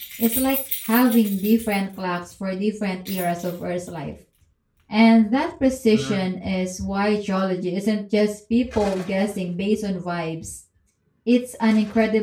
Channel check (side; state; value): both; identical; correlation 1.00